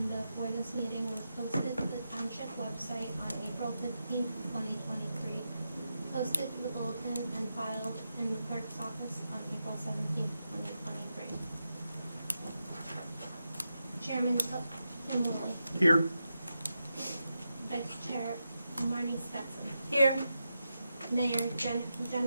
for this meeting was posted to the Township website on April 15th, 2023, posted to the bulletin and filed in the clerk's office on April 17th, 2023. Chairman Tim Woolley. Here. Vice Chair Marnie Stetson. Here. Mayor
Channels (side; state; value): both; inverted; correlation -0.88